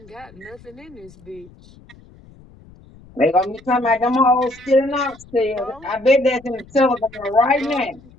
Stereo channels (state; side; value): noise; left; rumble, 24 dB below the sound